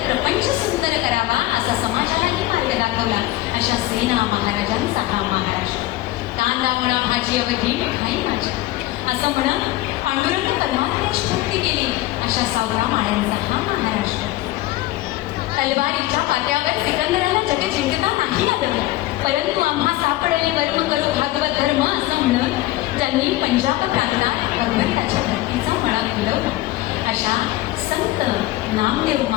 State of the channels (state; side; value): quieter; right; 17.1 dB